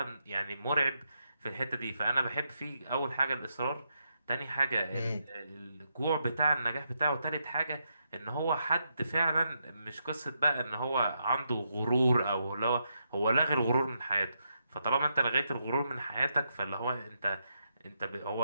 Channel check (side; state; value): both; inverted; correlation -0.81